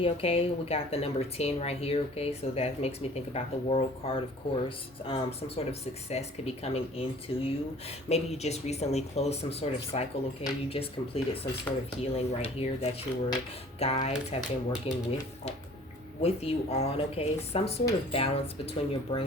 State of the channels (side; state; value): both; normal; correlation 0.50